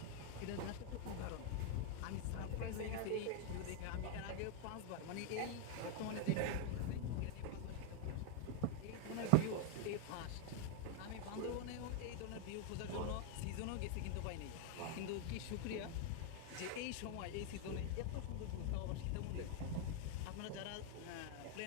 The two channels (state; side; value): different; both; correlation 0.00